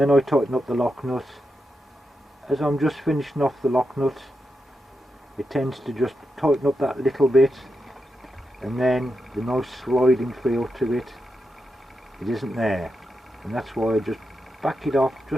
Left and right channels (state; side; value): normal; both; correlation 0.87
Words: I tighten up the lock nut, as I'm just finishing off the lock nut, it tends to just tighten up that little bit, and then the nice sliding feel to it isn't there. And that's why I just back it off